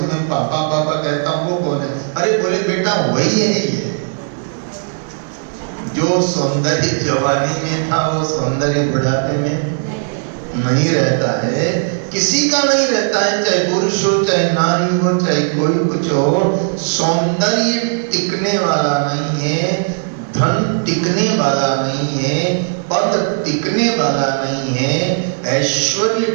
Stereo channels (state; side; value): silent; left; digital silence